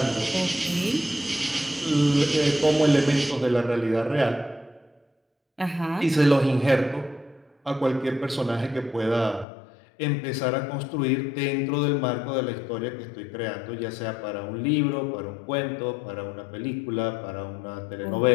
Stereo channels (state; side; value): drops out; right; at 9.5 s